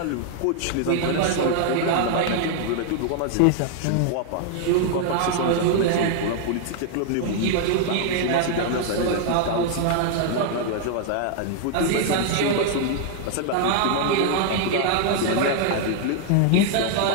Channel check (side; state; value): both; different; correlation 0.00